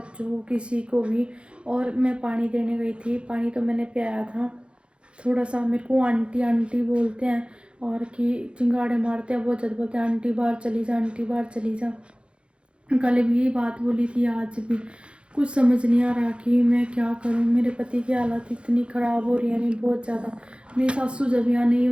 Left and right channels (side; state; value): left; late; 0.057 ms